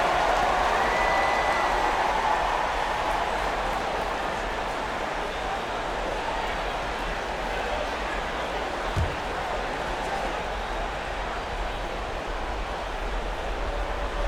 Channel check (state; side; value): identical; both; correlation 1.00